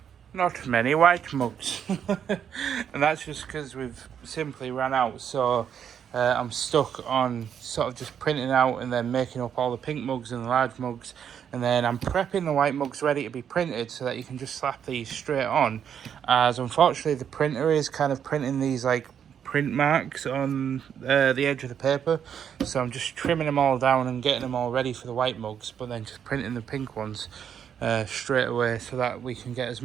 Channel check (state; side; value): quieter; left; 8.4 dB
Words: not many white mugs. And that's just because we've simply ran out, so I'm stuck on sort of just printing out and then making up all the pink mugs and the large mugs, and then I'm prepping the white mugs ready to be printed so that you can just slap these straight on, as unfortunately the printer is kind of printing these like print marks on the edge of the paper, so I'm just trimming them all down and getting them all ready for the white mugs, but then just printing the pink ones straight away so that we can get as